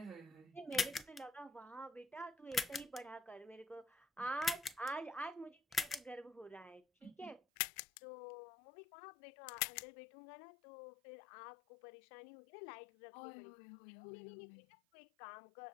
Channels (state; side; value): drops out; right; at 7.4 s